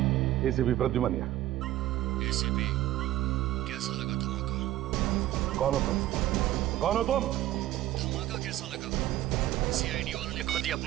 एसीपी प्रद्युमन, एसीपी, कैसा लगा धमाका? कौन हो तुम? कौन हो तुम? धमाका कैसा लगा? सीआईडी वालों ने खुद ही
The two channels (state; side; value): quieter; left; 14.6 dB